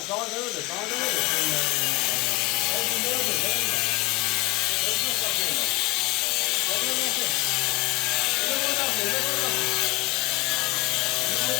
daha ne öyle, daha ne öyle. Ben şimdi ne öyle, ben öyle. Ben çok bakıyorum. Ben öyle bakıyorum. Ne böyle yapıyor, ne böyle yapıyor. Ne böyle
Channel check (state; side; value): quieter; right; 20.9 dB